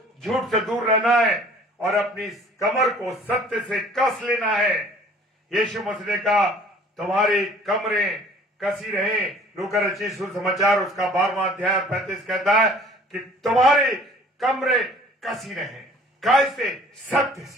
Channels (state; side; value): normal; both; correlation 0.52